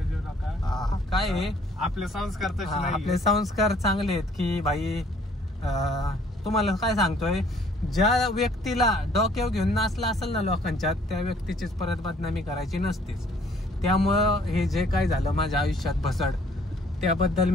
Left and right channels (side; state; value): both; normal; correlation 0.59